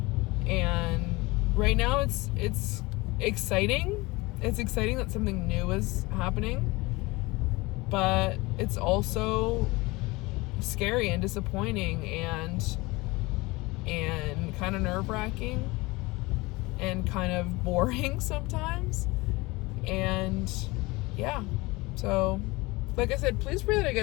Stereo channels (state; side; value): quieter; right; 22.8 dB